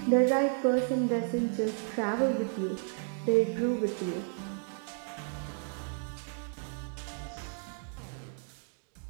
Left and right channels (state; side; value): silent; left; 56 dB below the other